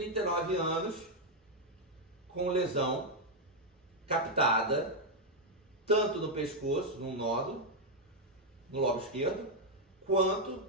anos com lesão captada tanto no pescoço, num nódulo, no lobo esquerdo, quanto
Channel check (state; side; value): normal; both; correlation 0.01